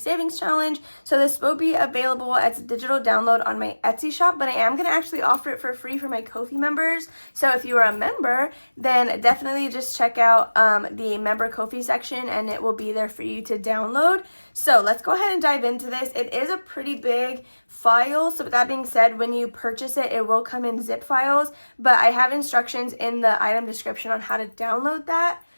Challenge. So this will be available as a digital download on my Etsy shop, but I am going to actually offer it for free for my Ko-fi members. So if you are a member, then definitely just check out the member Ko-fi section, and it will be there for you to download. So let's go ahead and dive into this. It is a pretty big file. So with that being said, when you purchase it, it will come in zip files, but I have instructions in the item description on how to download that.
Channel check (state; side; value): inverted; both; correlation -1.00